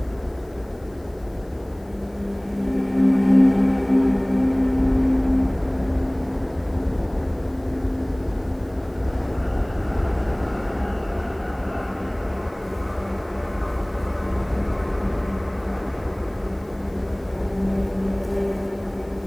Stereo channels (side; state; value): left; noise; hiss, 30 dB below the sound